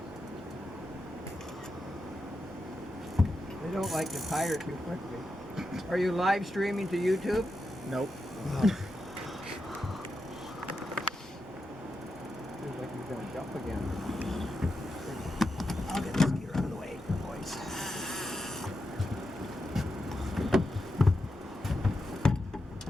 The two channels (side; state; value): both; normal; correlation 0.87